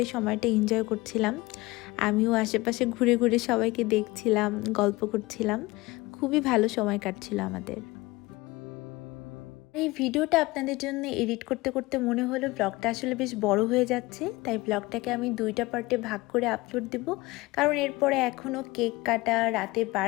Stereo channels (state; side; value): quieter; right; 21.3 dB